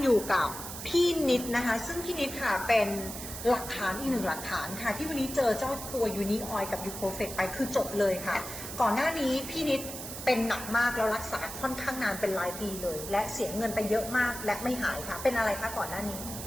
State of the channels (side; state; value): right; noise; hiss, 9 dB below the sound